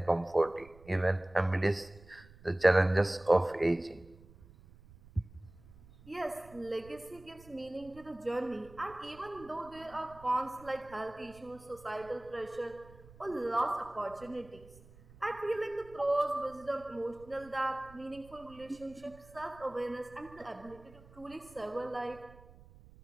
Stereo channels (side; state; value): right; noise; rumble, 22 dB below the sound